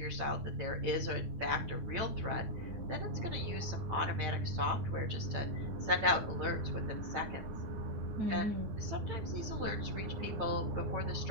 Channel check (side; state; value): left; late; 9.5 ms